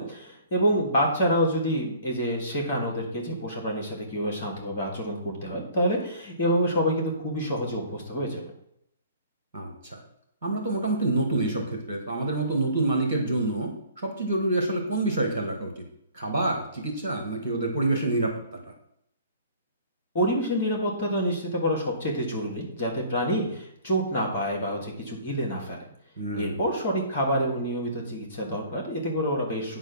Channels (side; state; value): both; inverted; correlation -0.51